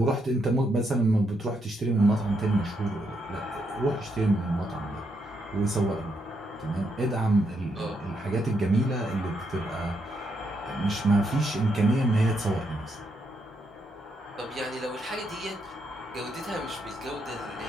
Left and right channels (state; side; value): normal; both; correlation 0.78